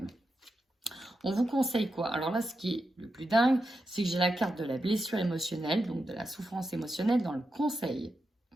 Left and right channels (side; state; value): both; normal; correlation 0.87